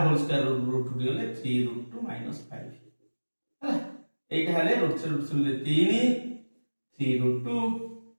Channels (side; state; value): both; inverted; correlation -1.00